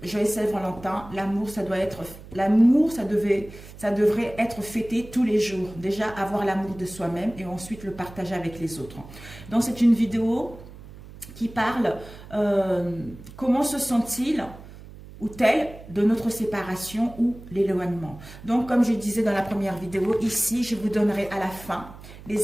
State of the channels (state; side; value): noise; right; hum, 17 dB below the sound